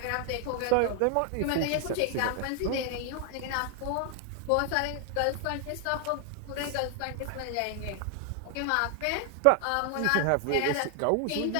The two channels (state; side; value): different; both; correlation 0.00